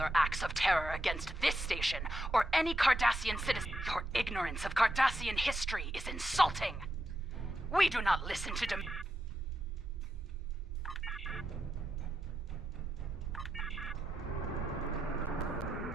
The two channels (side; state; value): both; normal; correlation 0.84